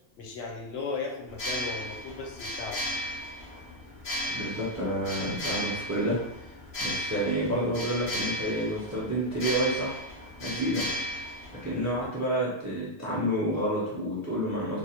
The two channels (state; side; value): normal; both; correlation 0.01